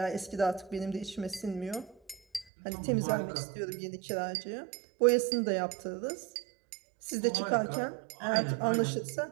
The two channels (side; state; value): left; drops out; at 2.5 s